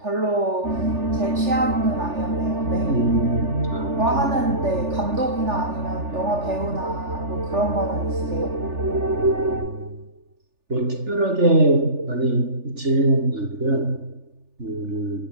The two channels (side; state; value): left; late; 3.4 ms